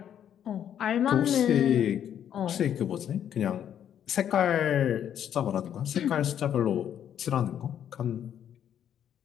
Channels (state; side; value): quieter; right; 9.7 dB